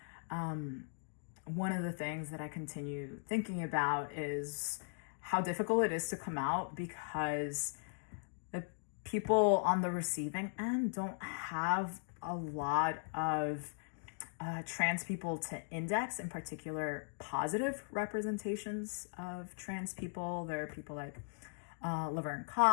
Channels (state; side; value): silent; right; digital silence